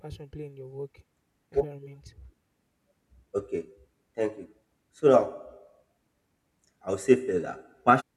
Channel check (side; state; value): both; identical; correlation 1.00